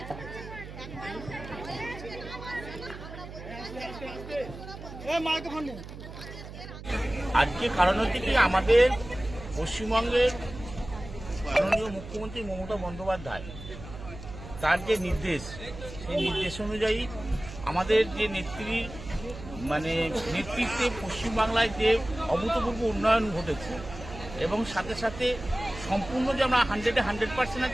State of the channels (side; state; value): right; noise; hum, 13 dB below the sound